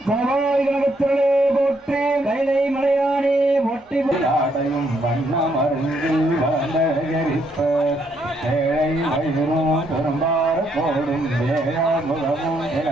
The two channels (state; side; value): normal; both; correlation 0.73